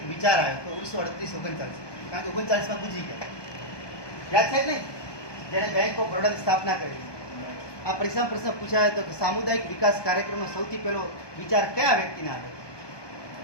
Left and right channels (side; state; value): right; late; 1.2 ms